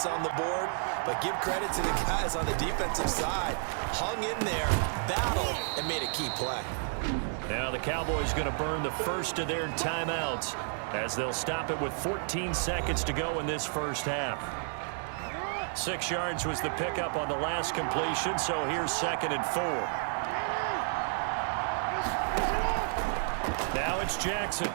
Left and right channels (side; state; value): left; silent; 57 dB below the other